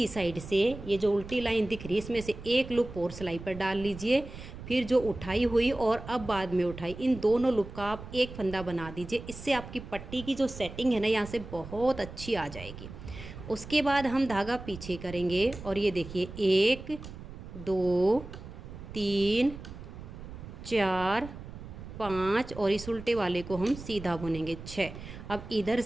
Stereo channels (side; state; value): right; noise; rumble, 13 dB below the sound